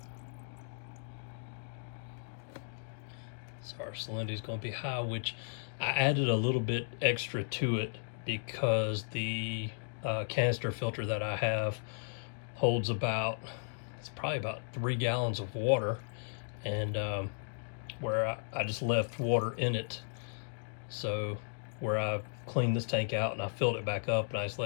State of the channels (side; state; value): right; silent; digital silence